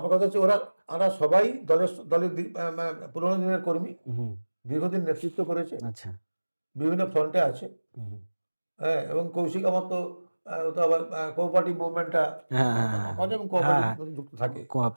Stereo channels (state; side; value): inverted; both; correlation -1.00